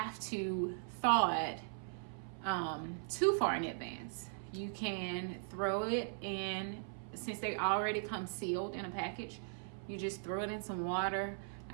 to thaw it too far in advance. You can throw it in, since they already come sealed in a package, you just throw it in some water.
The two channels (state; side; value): silent; left; 52 dB below the other